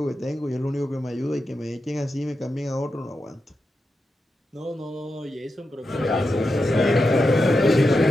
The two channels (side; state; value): both; normal; correlation 0.88